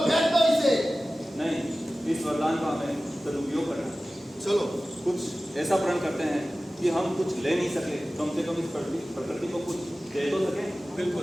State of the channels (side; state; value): both; normal; correlation 0.96